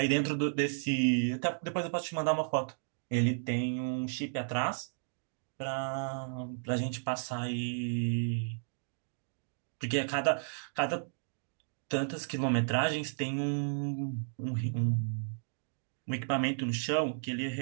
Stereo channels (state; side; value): silent; left; digital silence